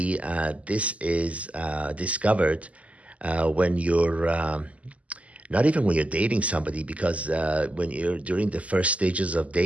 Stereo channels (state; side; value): late; left; 0.068 ms